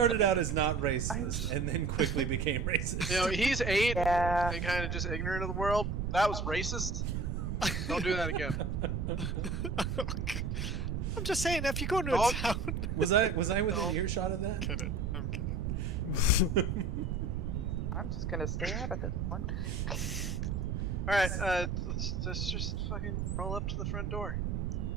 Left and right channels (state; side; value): noise; right; rumble, 1 dB below the sound